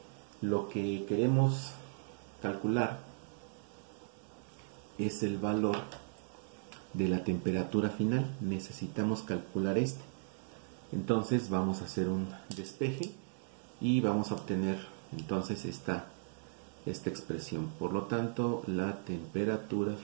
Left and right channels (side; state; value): left; silent; digital silence